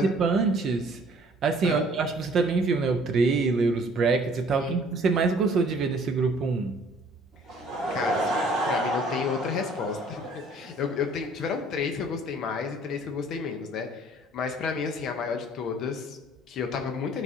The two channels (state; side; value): normal; both; correlation 0.56